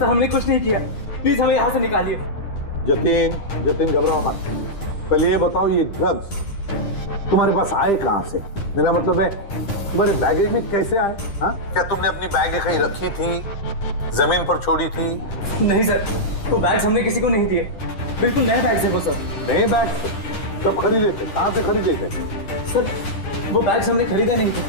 हमने कुछ नहीं किया, प्लीज हमें यहाँ से निकालिए। जतिन घबराओ मत। पहले ये बताओ ये ड्रग्स तुम्हारे पास आए कहाँ से? मेरा मतलब है तुम्हारे बैगेज में कैसे आए? हाँ, क्या तुमने अपनी बैग कहीं रखी थी, जमीन पर छोड़ी थी? नहीं सर, वो बैग्स हमने किसी को नहीं दिए। बिल्कुल नए बैग्स है वो सर। नए बैग? कब खरीदे थे, कहाँ से खरीदे थे? सर वो बैग्स हमने खरीदे नहीं थे,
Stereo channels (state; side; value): late; right; 10 ms